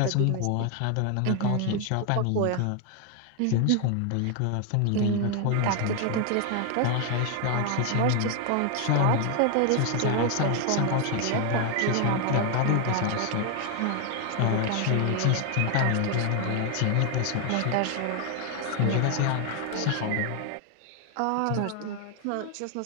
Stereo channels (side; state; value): both; different; correlation 0.00